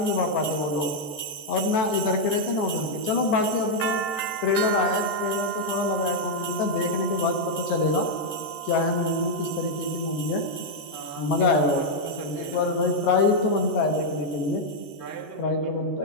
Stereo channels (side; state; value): right; late; 13 ms